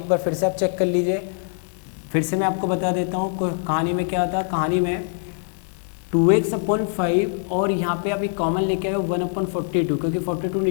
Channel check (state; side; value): silent; right; 63 dB below the other